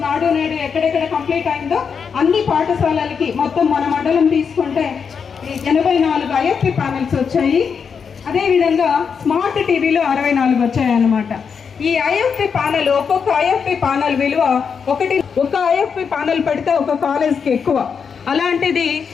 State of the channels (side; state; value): right; quieter; 6.3 dB